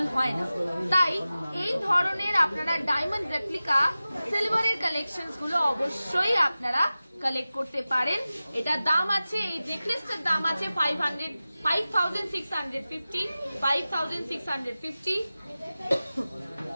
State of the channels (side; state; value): both; inverted; correlation -0.96